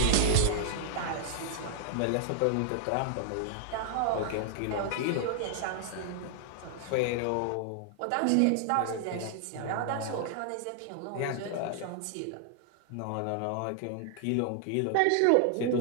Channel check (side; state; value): both; different; correlation -0.01